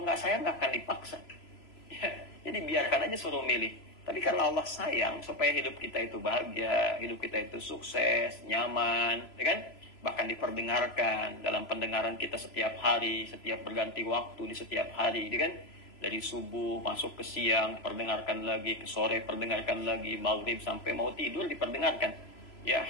nggak sayang, nggak akan dipaksa. Ya, jadi biarkan aja suruh milih. Tapi karena Allah sayang, supaya hidup kita itu bahagia, hidup kita itu sukses, nyaman, ya kan? Bahkan diperdengarkan dalam pendengaran kita setiap hari, setiap berganti waktu di setiap hari, ya kan? Dari subuh masuk ke siang perdengarkan lagi, ke sore perdengarkan lagi, maghrib sampai mau tidur diperdengarkan. Ya,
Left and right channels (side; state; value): right; late; 3.0 ms